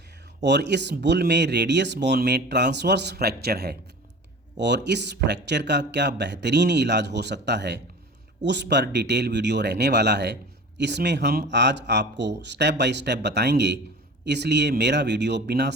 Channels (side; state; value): both; normal; correlation 0.38